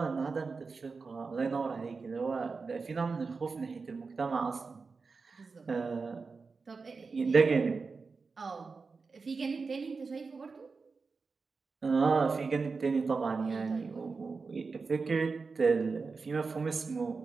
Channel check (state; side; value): quieter; left; 4.5 dB